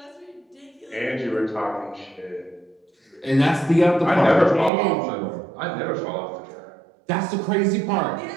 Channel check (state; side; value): drops out; left; at 4.7 s